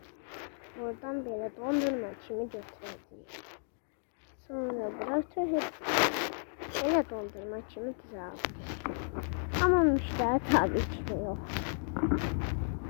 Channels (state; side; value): silent; right; digital silence